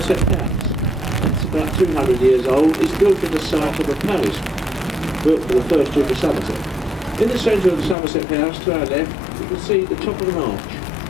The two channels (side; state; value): right; drops out; at 8.0 s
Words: House. It's about 200 years old. It's built in the site of a palace built for the first Duke of Somerset. In the centre of the Somerset House, to our left, you can see the top of an